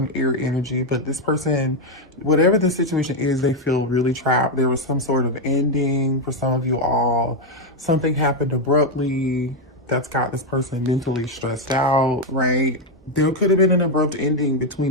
air energy. But this person, whatever the situation is, they feel really trapped. There was some sort of ending for some of you all. Something happened abruptly that's got this person mentally stressed out, right? There could have been an abrupt ending between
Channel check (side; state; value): both; normal; correlation 0.03